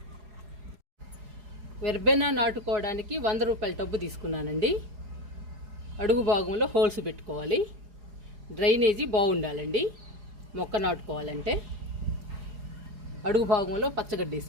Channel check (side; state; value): left; late; 4.8 ms